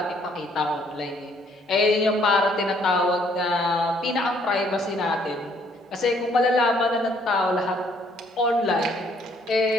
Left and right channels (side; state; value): both; normal; correlation 0.65